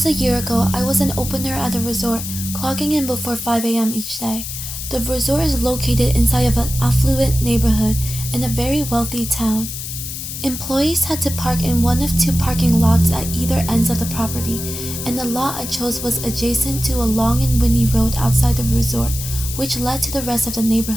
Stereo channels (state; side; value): noise; left; hiss, 7 dB below the sound